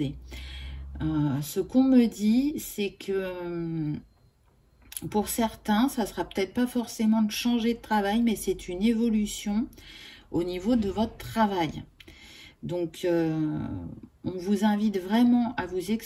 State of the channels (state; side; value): identical; both; correlation 1.00